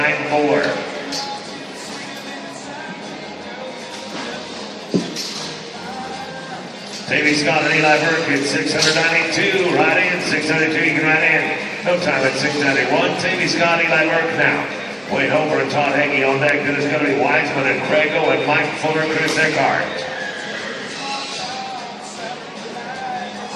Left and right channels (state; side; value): identical; both; correlation 1.00